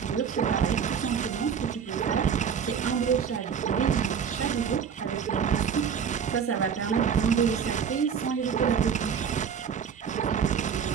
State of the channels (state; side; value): quieter; left; 7.2 dB